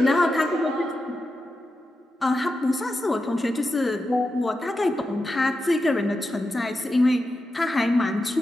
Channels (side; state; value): both; normal; correlation 0.89